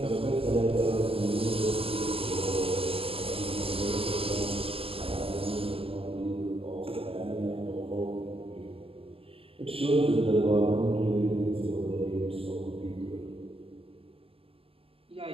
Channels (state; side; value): late; left; 0.27 ms